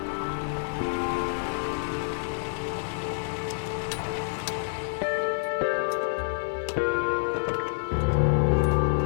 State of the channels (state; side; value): silent; right; digital silence